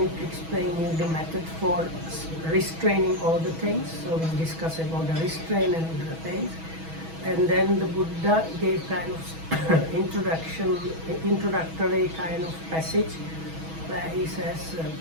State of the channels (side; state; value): left; late; 6.2 ms